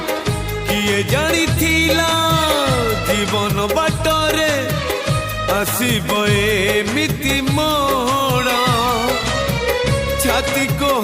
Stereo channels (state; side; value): identical; both; correlation 1.00